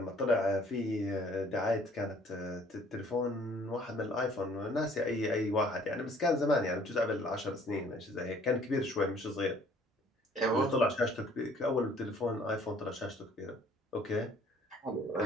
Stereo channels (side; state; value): both; normal; correlation 0.58